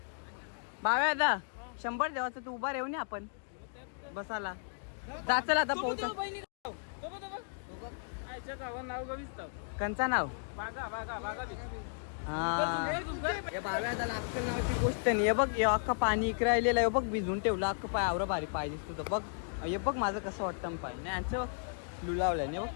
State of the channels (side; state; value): right; silent; digital silence